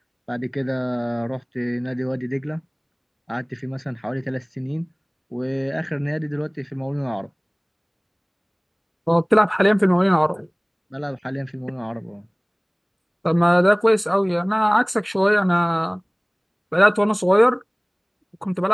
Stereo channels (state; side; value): identical; both; correlation 1.00